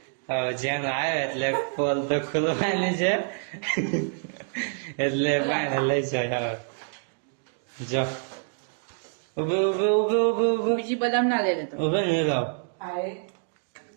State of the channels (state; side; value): silent; left; digital silence